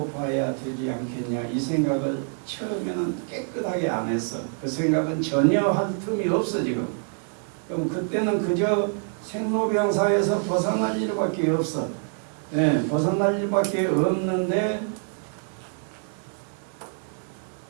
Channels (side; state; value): left; silent; 57 dB below the other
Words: 봐야 되지 않겠냐 이 생각을 처음에는 깨끗하게 안 했어. 그 생각은 전혀 할 틈이 없어 지금. 그럼 그때는 그저 생로병사에서 벗어날 일밖에 없어. 예, 벗어날 일밖에 없는데